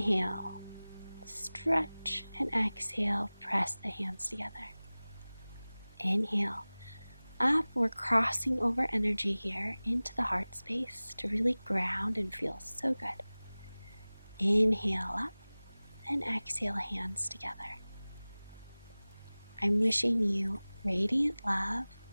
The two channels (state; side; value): inverted; both; correlation -0.99